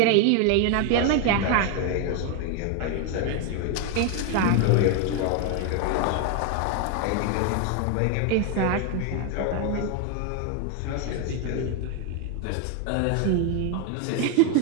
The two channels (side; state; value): both; different; correlation 0.01